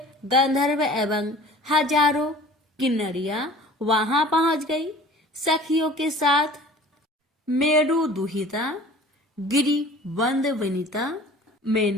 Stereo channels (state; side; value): normal; both; correlation 0.45